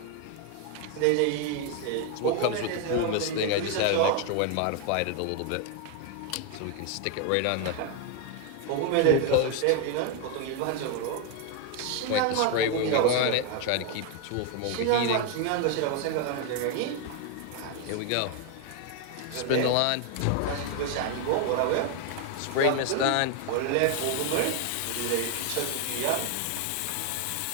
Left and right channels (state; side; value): different; both; correlation 0.01